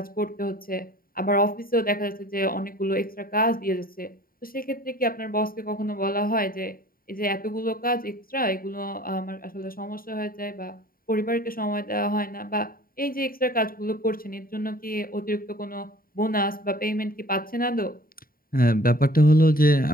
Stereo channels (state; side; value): late; right; 0.42 ms